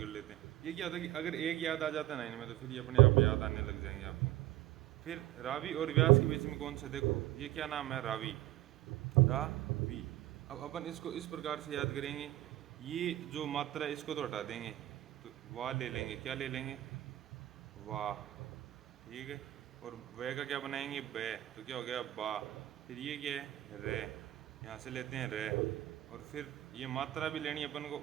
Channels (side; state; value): left; quieter; 15.3 dB